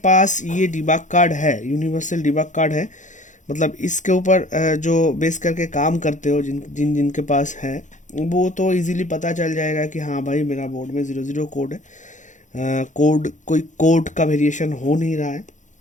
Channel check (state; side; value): late; right; 0.36 ms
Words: ये डिबग कार्ड है, यूनिवर्सल डिबग कार्ड है, मतलब इसके ऊपर जो बेस करके काम करते हो, जिनके पास है, वो तो इजीली पता चल जाएगा कि हाँ भाई मेरा बोर्ड में 00 कोड है। कोड कोई कोड का वेरिएशन हो नहीं रहा है।